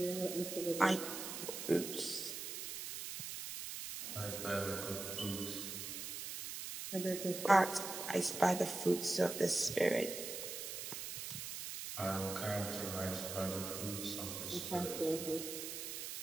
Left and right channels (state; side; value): noise; right; hiss, 6 dB below the sound